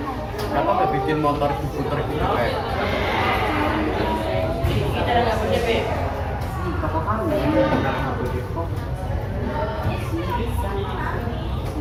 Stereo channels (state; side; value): identical; both; correlation 1.00